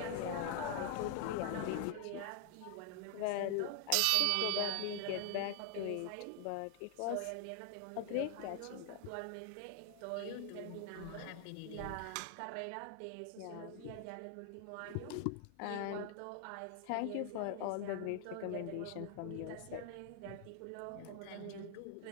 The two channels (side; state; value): both; different; correlation 0.00